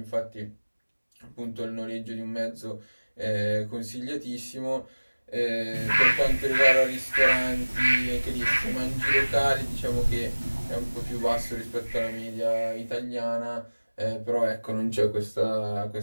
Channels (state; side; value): inverted; both; correlation -1.00